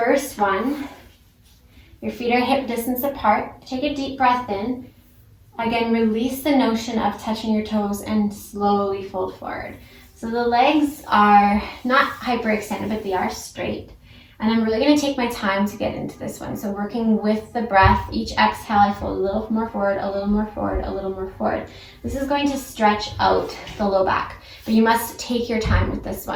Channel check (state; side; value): identical; both; correlation 1.00